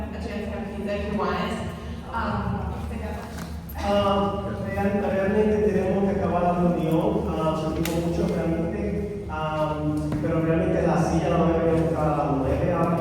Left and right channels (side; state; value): both; identical; correlation 1.00